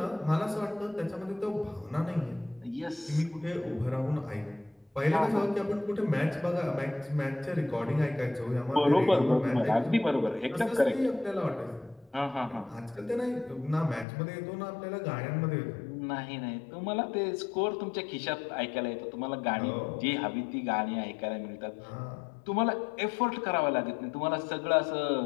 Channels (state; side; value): drops out; right; at 14.1 s